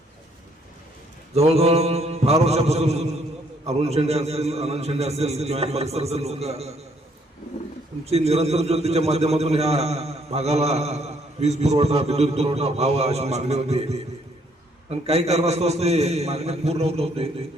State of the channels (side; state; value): both; normal; correlation 0.67